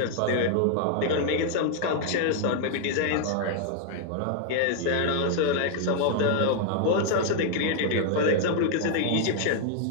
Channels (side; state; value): both; different; correlation 0.00